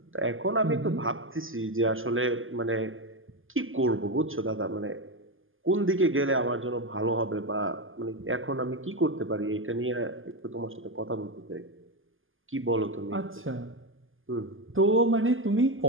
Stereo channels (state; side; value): late; left; 0.59 ms